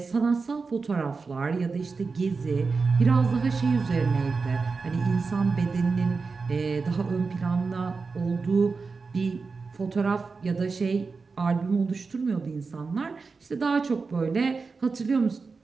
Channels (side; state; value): left; quieter; 4.5 dB